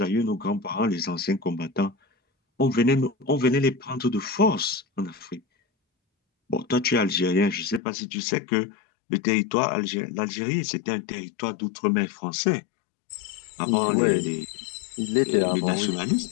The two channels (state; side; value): drops out; right; at 7.8 s